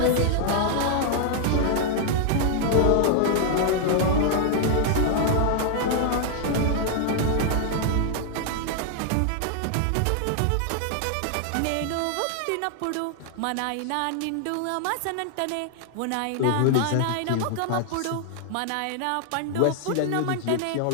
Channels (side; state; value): both; different; correlation 0.00